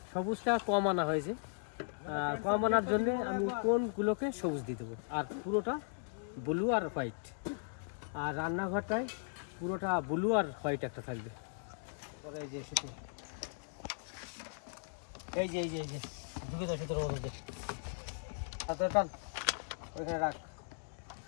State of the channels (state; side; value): silent; right; digital silence